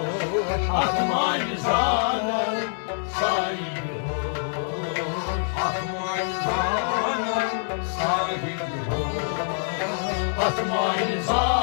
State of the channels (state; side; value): silent; right; digital silence